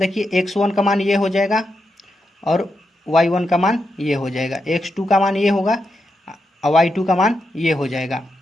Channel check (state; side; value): normal; both; correlation 0.85